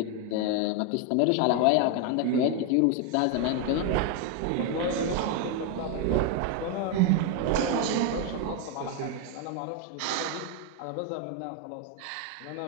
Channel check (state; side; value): different; both; correlation 0.01